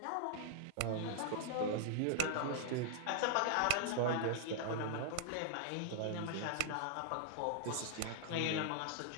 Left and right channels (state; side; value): different; both; correlation -0.01